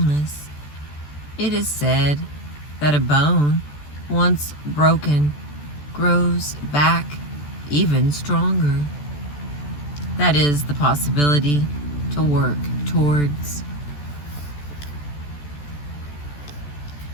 It is said that a bone, once broken, grows back even stronger. That is the possibility to work towards.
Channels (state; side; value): late; right; 14 ms